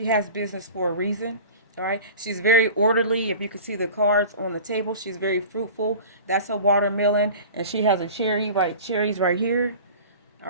has business for a reason. All right, she's very orderly. If you can see the cards on the table, she's very fruitful. That's a watermelon, and she has a cherries right here. All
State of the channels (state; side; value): inverted; both; correlation -0.39